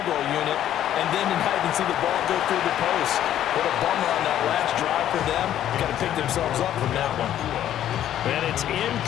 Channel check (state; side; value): quieter; right; 11.4 dB